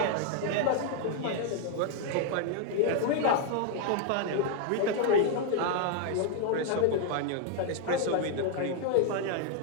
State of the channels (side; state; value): both; different; correlation 0.00